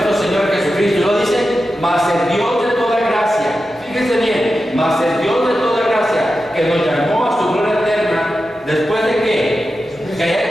Señor Jesucristo. Y lo dice: mas el Dios de toda gracia, fíjense bien, mas el Dios de toda gracia, que nos llamó a su gloria eterna, después de que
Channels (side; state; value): both; normal; correlation 0.91